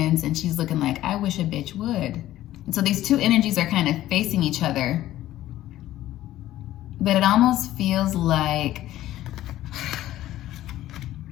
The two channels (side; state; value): right; quieter; 14.2 dB